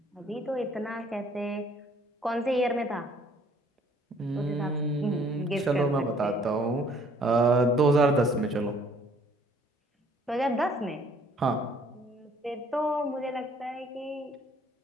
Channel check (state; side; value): normal; both; correlation 0.59